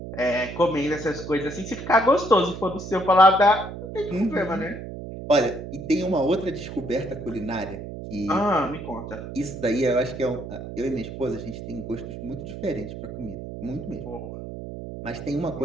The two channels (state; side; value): noise; right; hum, 9 dB below the sound